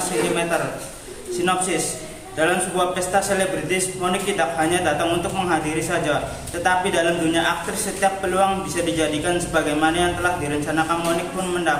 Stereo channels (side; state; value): both; identical; correlation 1.00